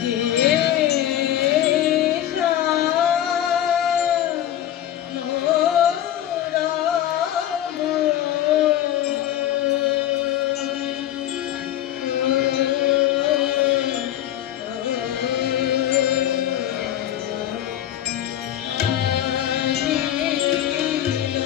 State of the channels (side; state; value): right; quieter; 11.8 dB